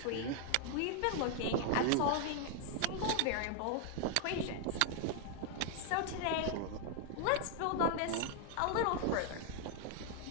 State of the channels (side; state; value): both; different; correlation 0.00